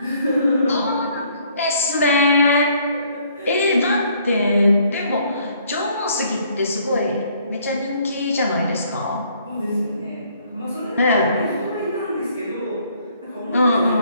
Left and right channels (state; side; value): inverted; both; correlation -0.63